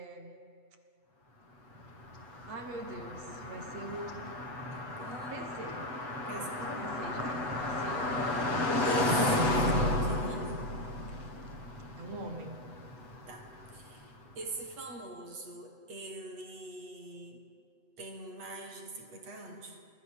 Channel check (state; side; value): late; left; 8.1 ms